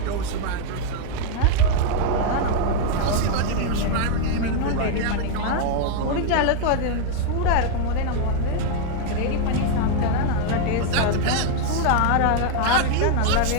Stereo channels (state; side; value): different; both; correlation 0.00